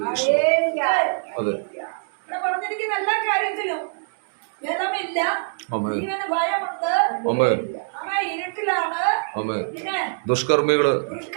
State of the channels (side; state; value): left; silent; 63 dB below the other